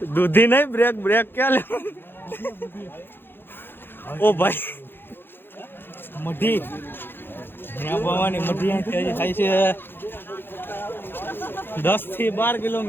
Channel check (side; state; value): right; late; 0.10 ms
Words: દૂધી નહીં, બ્રેક ક્યાં લેવો? ઓ ભાઈ મઢી, ત્યાં ભવાની મઢી હજી થાય છે 10 થી 12